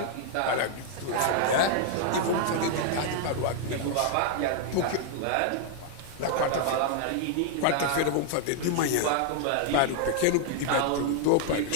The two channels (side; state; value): both; different; correlation 0.00